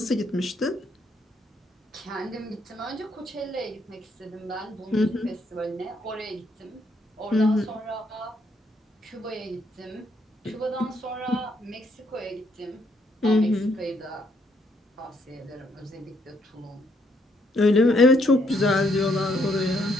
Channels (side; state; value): both; normal; correlation 0.72